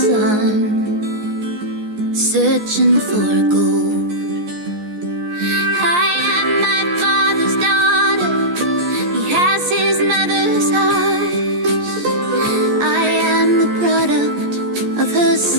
searching for gold. His mother's eyes. I am the product of her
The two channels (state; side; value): late; left; 14 ms